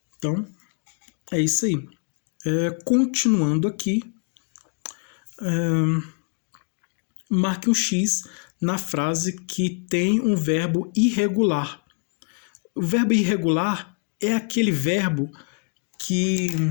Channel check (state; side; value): quieter; right; 39.0 dB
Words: Então, é isso aí. Continuando aqui, marque um X na frase que tem um verbo irregular. O verbo irregular é aquele verbo que...